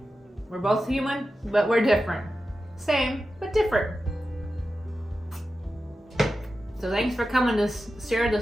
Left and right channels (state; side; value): normal; both; correlation 0.92